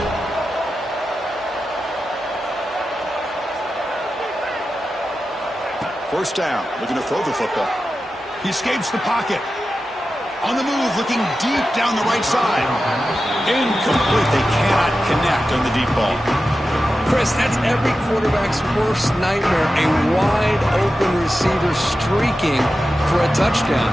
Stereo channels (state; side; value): normal; both; correlation 0.92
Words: First down, looking to throw the football. He escapes the pocket. On the move, looking deep down the right side. Incomplete. They cannot connect on the deep ball. Chris, that's every quarterback's worst nightmare. A wide-open receiver streaking for a touchdown.